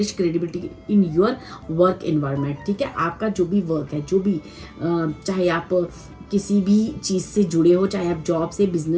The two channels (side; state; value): both; identical; correlation 1.00